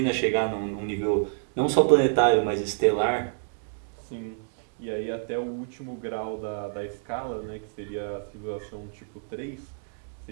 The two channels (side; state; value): left; silent; digital silence